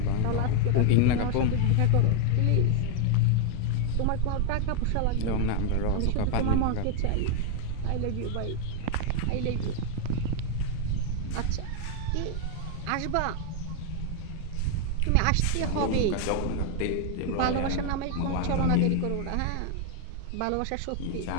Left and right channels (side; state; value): both; different; correlation 0.00